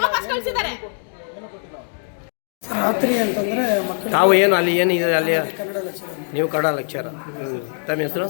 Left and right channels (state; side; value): silent; right; 57 dB below the other